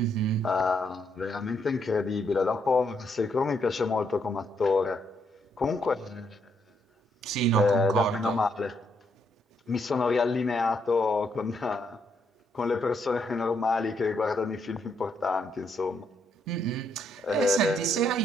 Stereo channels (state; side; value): normal; both; correlation 0.75